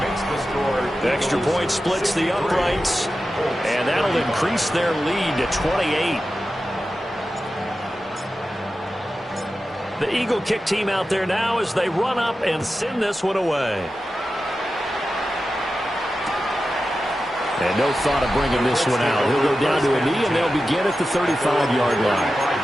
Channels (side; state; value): both; normal; correlation 0.92